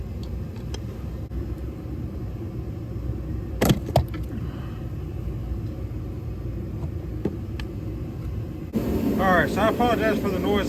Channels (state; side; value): identical; both; correlation 1.00